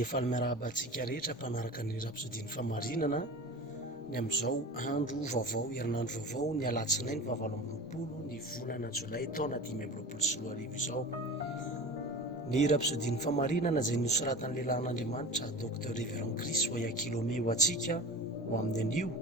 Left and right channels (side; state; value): both; normal; correlation 0.34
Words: efa miarahaba-antsika rehetra mpanaraka ny rapsodiny famarinana ny amin'izao andro vaovao, herinandro vaovao, ny alatsinainy 20 ny volana jolay taona 2024 izao. Ny rapsodiny famarinana izay nosoratan'ny lehilahin'Andriamanitra Dr Révérend Chris Oyakhilome ho antsika ho amin'ny anio